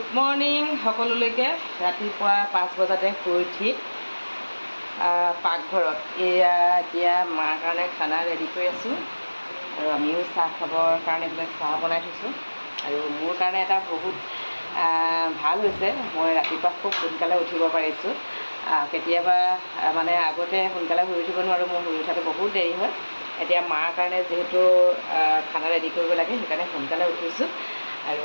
মৰ্ণিং সকলোলৈকে। ৰাতিপুৱা 5 বজাতে শুই উঠি পাকঘৰত এয়া এতিয়া মাৰ কাৰণে খানা ৰেডি কৰি আছোঁ আৰু আমিও চাহ খাবৰ কাৰণে এইবিলাক চাহ বনাই থৈছোঁ। আৰু মোৰ কাৰণে এটা বহুত ভাল হৈছে, মই ৰাতিপুৱা খুব সোনকালে উঠিব পাৰিছোঁ। কেতিয়াবা মানে আগতে সোনকালে শুই উঠিব নোৱাৰোঁ, মোৰ শুই উঠাটো বহুত দেৰি হয়। এতিয়া মাৰ কাৰণে যিহেতু খানা ৰেডি কৰিব লাগে সেইকাৰণে সোনকালে উঠিছোঁ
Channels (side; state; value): both; inverted; correlation -1.00